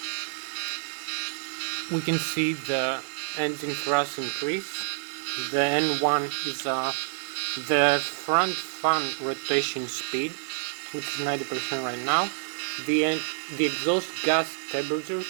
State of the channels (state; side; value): silent; left; digital silence